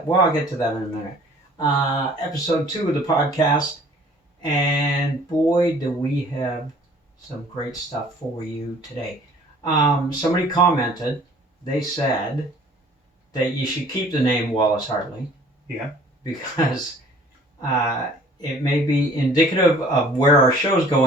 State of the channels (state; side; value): normal; both; correlation 0.52